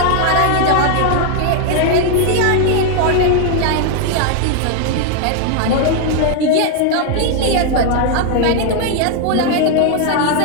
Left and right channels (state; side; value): different; both; correlation 0.00